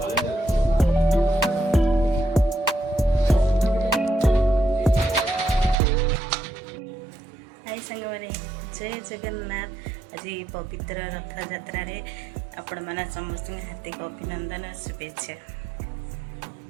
जय जगन्नाथ आज पवित्र रथ यात्रा रे आपण माना समस्त हार्दिक अभिनंदन शुभेच्छा।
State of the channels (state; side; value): drops out; left; at 5.8 s